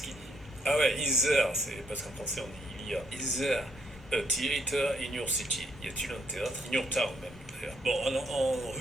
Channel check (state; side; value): normal; both; correlation 0.73